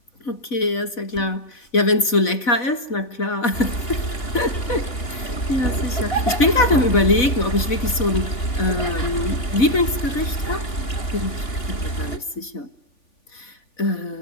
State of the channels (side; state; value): right; late; 4.1 ms